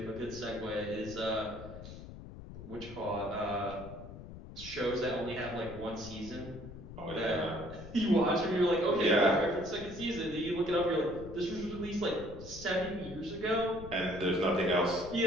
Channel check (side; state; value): left; noise; rumble, 13 dB below the sound